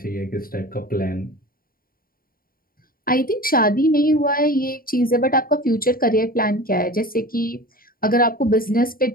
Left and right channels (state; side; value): late; right; 0.42 ms